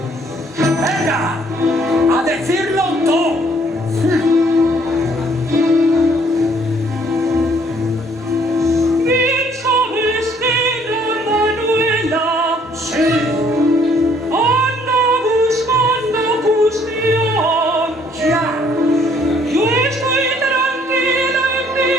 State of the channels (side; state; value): both; normal; correlation 0.63